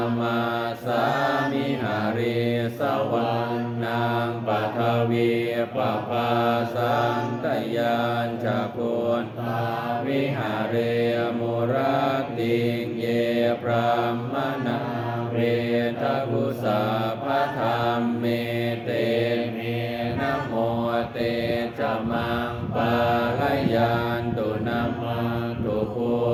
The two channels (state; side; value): identical; both; correlation 1.00